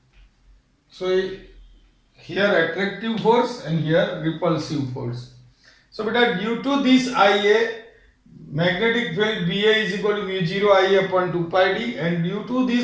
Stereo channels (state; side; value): identical; both; correlation 1.00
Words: So here attractive force and here repulsive force. So beta, due to this IA, magnetic field BA is equal to mu0 I upon 2 pi d, and due to